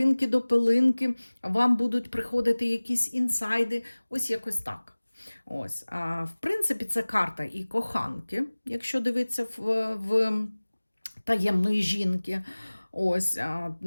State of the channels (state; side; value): inverted; both; correlation -1.00